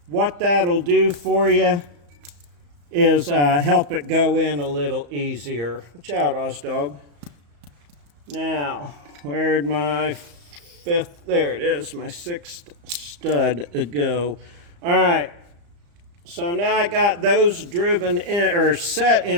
What that'll do for you is help it go in a little easier. Watch out, Ozdog. Now, where'd my 5th, there it is, my 6th stud go. All right, so now I got those driven in, or set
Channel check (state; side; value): late; left; 35 ms